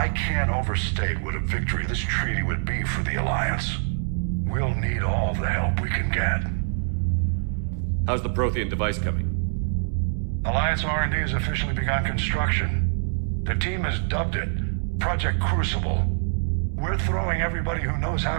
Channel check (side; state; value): left; silent; 62 dB below the other